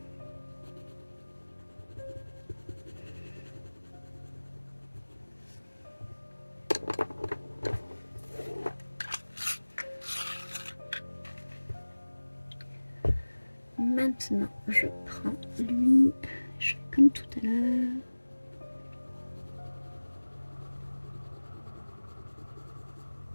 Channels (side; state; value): both; inverted; correlation -1.00